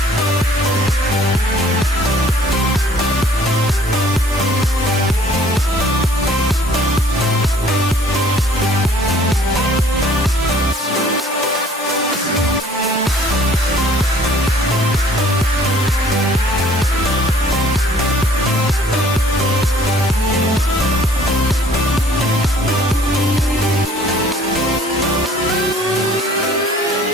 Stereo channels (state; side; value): normal; both; correlation 0.56